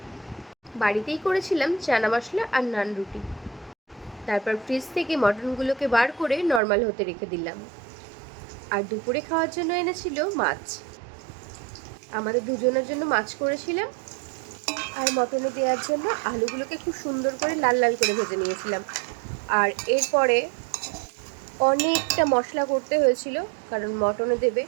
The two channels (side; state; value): left; drops out; at 6.6 s